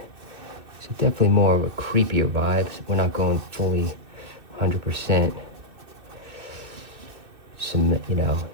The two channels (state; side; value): late; left; 2.6 ms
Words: So definitely more of a creepier vibe. We're not going fully 100%